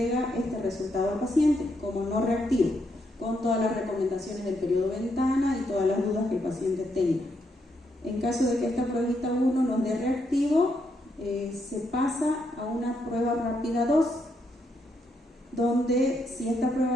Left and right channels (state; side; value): normal; both; correlation 0.78